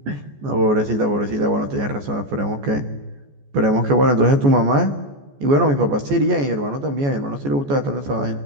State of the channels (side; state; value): left; late; 14 ms